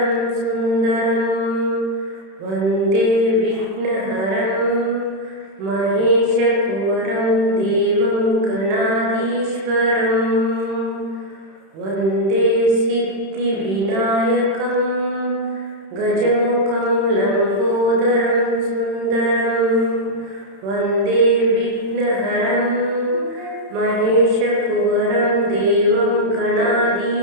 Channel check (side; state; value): left; late; 31 ms